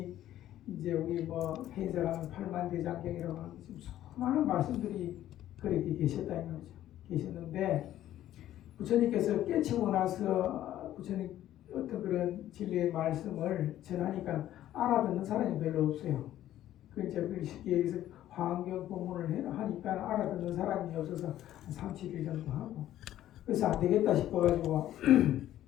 이제 우리 뭐 해인사가는 8만대장경이라고 하는 지금 수많은 말씀들이 그렇게 계셨다는 거죠. 계셨는데 부처님께서 깨치고 나서 부처님 어떤 그런 진리의 말씀을 전하니까 알아듣는 사람이 별로 없어요. 그 이제 쉽게 얘기해서 화엄경 법문을 하니까 알아듣는 사람이 없어서 한 3, 7일 정도 하고, 그래서 안 되겠다 싶어가지고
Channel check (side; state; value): right; quieter; 12.8 dB